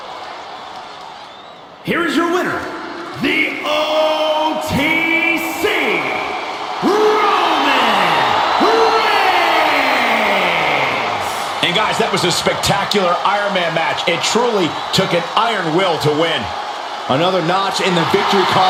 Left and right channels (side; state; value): both; identical; correlation 1.00